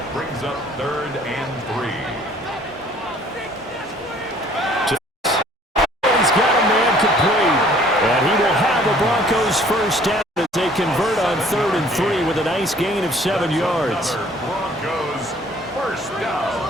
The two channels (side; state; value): both; normal; correlation 0.56